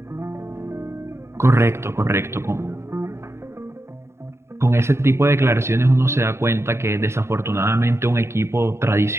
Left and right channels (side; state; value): left; late; 0.13 ms